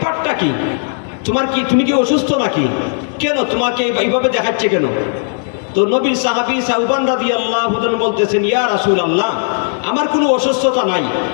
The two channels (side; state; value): right; silent; 69 dB below the other